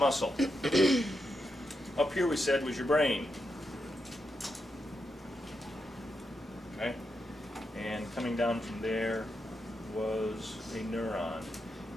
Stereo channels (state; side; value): normal; both; correlation 0.85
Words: Up here we said was your brain. Okay? And coming down from there was a neuron.